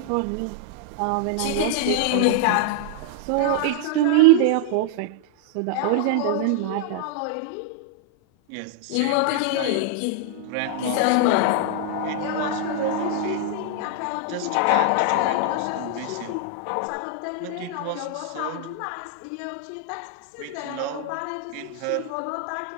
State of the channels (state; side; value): different; both; correlation -0.01